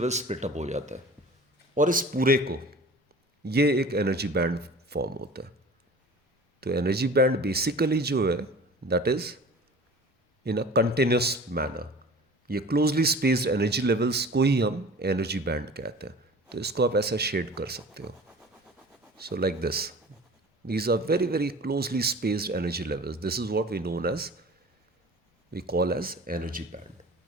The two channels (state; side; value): normal; both; correlation 0.41